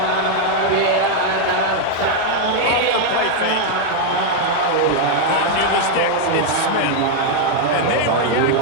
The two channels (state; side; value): different; both; correlation 0.00